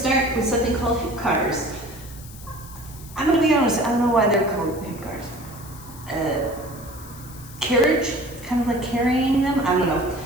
with something called hip cars. I'm going to be honest, I don't know why they're called hip cars. Carriage, kind of like carrying them, I don't know.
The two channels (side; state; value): left; noise; hiss, 18 dB below the sound